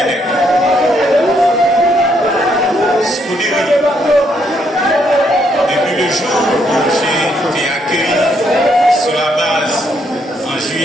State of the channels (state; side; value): normal; both; correlation 0.73